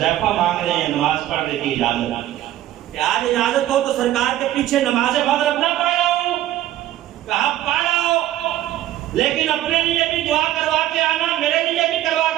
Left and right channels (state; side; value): quieter; left; 13.6 dB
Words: مانگ رہے ہیں نماز پڑھنے کی اجازت، کہ آج اجازت ہو تو سرکار کے پیچھے نماز مغرب نہ پڑھاؤں؟ کہا پڑھاؤ، لیکن اپنے لیے بھی دعا کروا کے آنا، میرے لیے بھی کروا